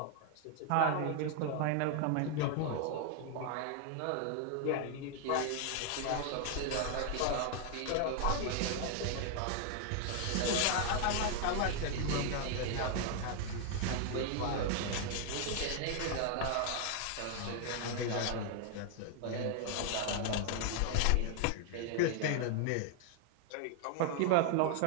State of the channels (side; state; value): both; different; correlation 0.00